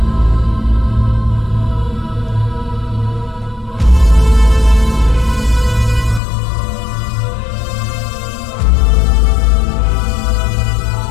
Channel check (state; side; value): drops out; right; at 6.2 s